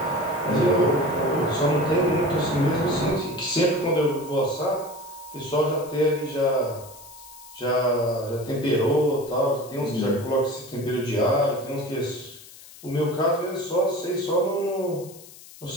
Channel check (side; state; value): left; noise; hiss, 19 dB below the sound